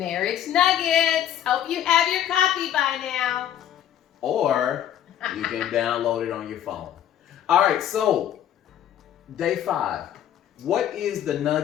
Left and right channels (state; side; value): quieter; right; 10.7 dB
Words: Nuggets. Hope you have your copy by now. Or you can download it on your phone. All right, so day 5. What is the